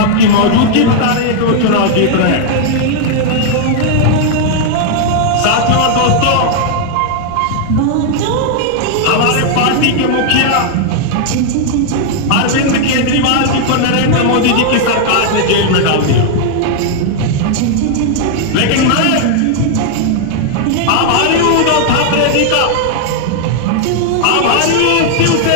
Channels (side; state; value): both; different; correlation 0.00